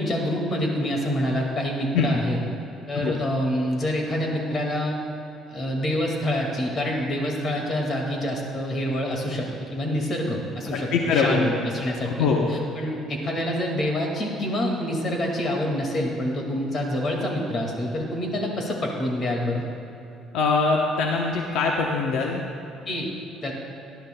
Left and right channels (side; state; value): both; normal; correlation 0.63